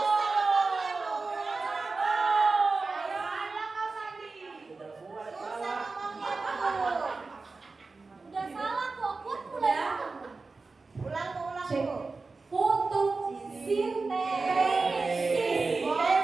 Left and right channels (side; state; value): left; quieter; 3.9 dB